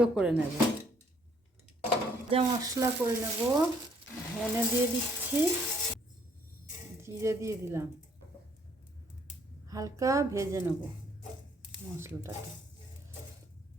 করে নেব। যা মশলা করে নেব, ধনে দিয়ে দিচ্ছি, জিরে দিয়ে দিলাম, হালকা ভেজে নেব মশলাটাকে।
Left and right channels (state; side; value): normal; both; correlation 0.65